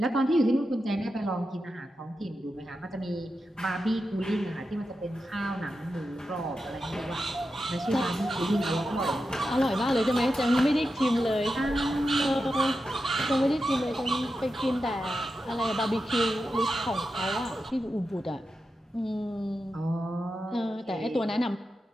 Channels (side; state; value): both; normal; correlation 0.89